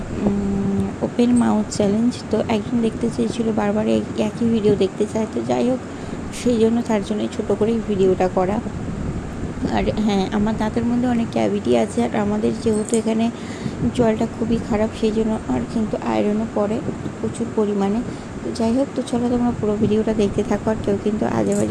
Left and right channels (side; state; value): both; identical; correlation 1.00